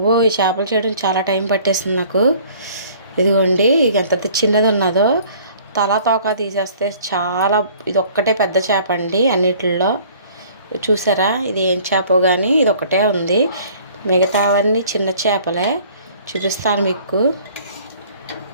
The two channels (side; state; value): both; inverted; correlation -0.53